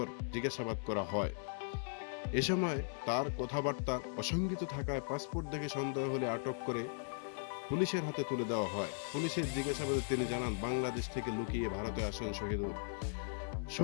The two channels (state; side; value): silent; right; digital silence